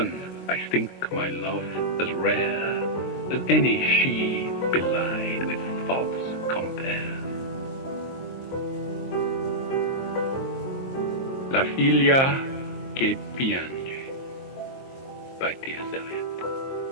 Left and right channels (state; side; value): late; right; 23 ms